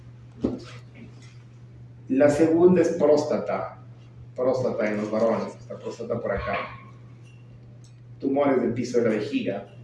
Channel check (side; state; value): both; identical; correlation 1.00